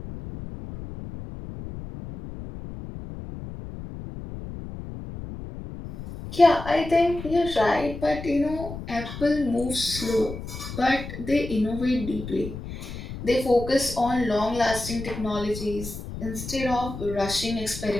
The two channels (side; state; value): left; noise; rumble, 10 dB below the sound